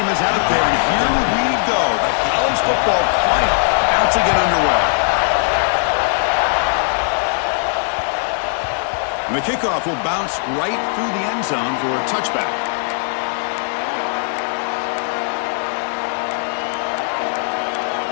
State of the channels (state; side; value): silent; right; digital silence